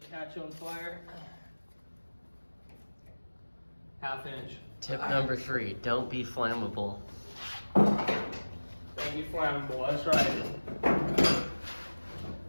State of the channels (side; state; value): both; inverted; correlation -1.00